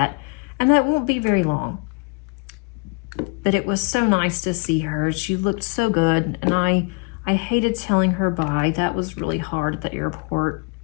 and that won't be very long. But it was so nice to see her. She looked so good, and I hated telling her bye. That was really hard at the airport.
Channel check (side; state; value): right; quieter; 34.0 dB